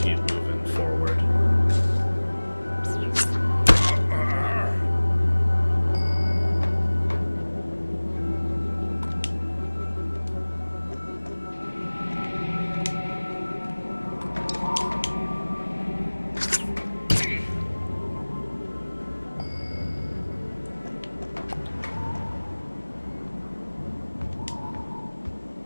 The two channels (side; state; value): both; inverted; correlation -1.00